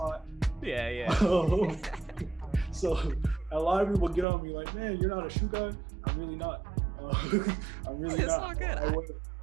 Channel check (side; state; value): left; drops out; at 4.2 s